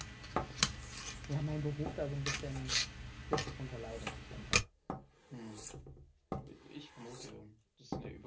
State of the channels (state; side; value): identical; both; correlation 1.00